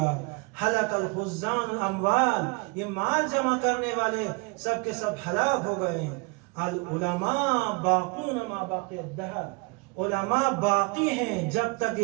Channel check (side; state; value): left; quieter; 29.6 dB